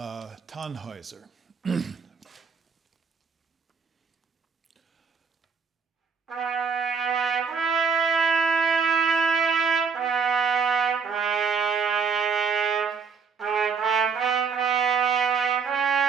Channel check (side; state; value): left; quieter; 5.6 dB